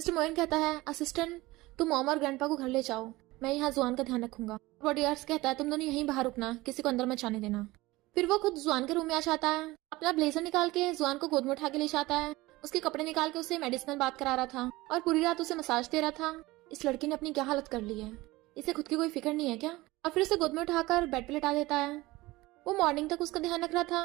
मोइन कहता है असिस्टेंट तुम मॉम और ग्रैंडपा को घर ले जाओ, मैं यहाँ जुआन का ध्यान रखूंगा। बॉडीगार्ड्स कहता है तुम दोनों यहीं बाहर रुकना, किसी को अंदर मत जाने देना। फिर वो खुद जुआन के रूम में आ जाता है, अपना ब्लेजर निकाल के जुआन को गोद में उठा के ले जाता है, उसके कपड़े निकाल के उसे मेडिसिनल बात करा रहा था और पूरी रात उसे मसाज दे रहा था। इस लड़की ने अपनी क्या हालत कर ली है, इसे खुद की कोई फिक्र नहीं है क्या? और फिर उसे गोद में उठाकर बेड पे लेटा देता है। वो मॉर्निंग तक उसका ध्यान रख रहा था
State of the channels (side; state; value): left; quieter; 19.9 dB